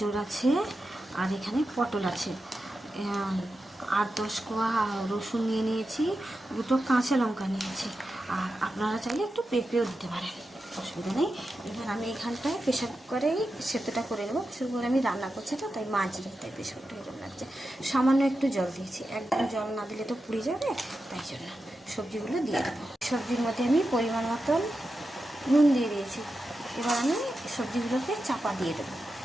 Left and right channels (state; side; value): normal; both; correlation 0.90